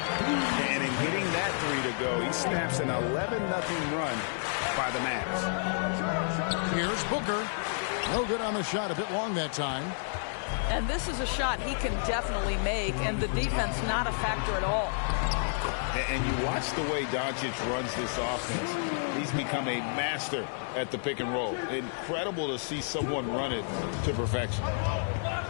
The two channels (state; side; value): silent; right; 58 dB below the other